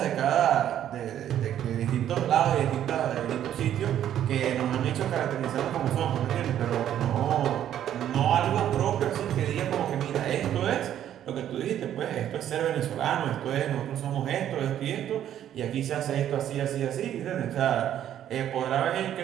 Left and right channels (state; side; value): quieter; left; 10.9 dB